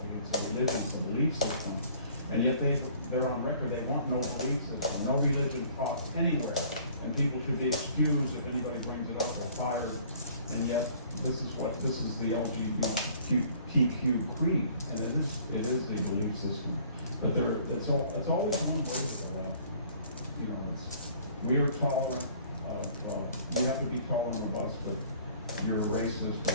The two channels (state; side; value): inverted; both; correlation -0.54